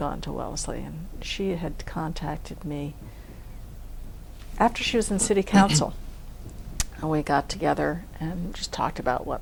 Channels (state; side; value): identical; both; correlation 1.00